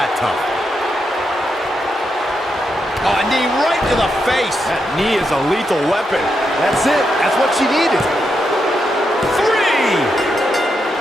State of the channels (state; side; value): normal; both; correlation 0.83